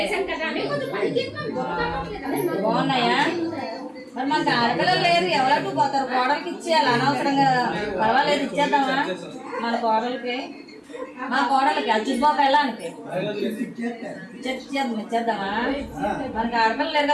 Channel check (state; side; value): identical; both; correlation 1.00